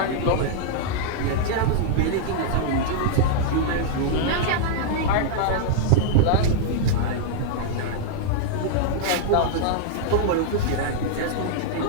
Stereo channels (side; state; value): both; different; correlation -0.01